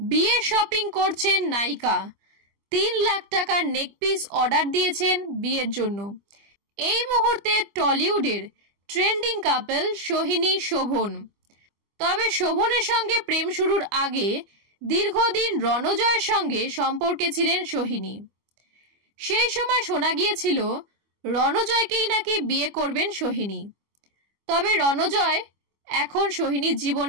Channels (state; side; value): late; left; 25 ms